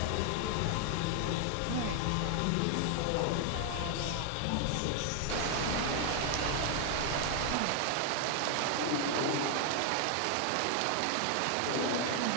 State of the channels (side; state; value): both; different; correlation 0.00